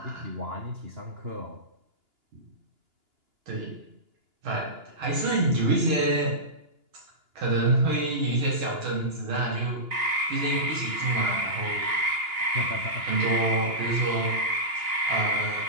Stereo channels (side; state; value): left; late; 2.9 ms